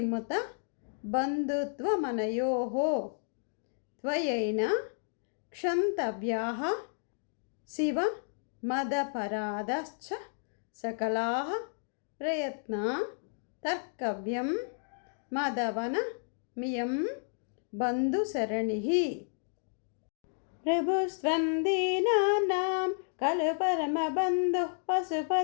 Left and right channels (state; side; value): silent; right; digital silence